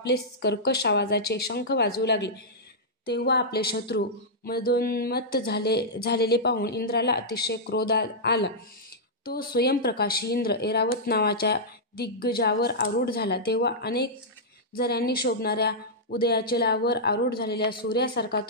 कर्कश आवाजाचे शंख वाजवू लागले. तेव्हा आपले शत्रू मदोन्मत्त झालेले पाहून इंद्राला अतिशय क्रोध आला. तो स्वयंप्रकाशी इंद्र ऐरावत नावाच्या दिग्गजावर आरूढ झाला. तेव्हा अनेक झऱ्यांनी शोभणाऱ्या उदयाचलावर आरूढ झालेल्या सूर्यासारखा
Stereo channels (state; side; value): normal; both; correlation -0.10